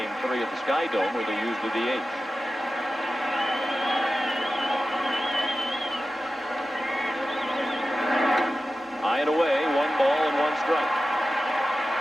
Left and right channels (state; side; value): normal; both; correlation 0.94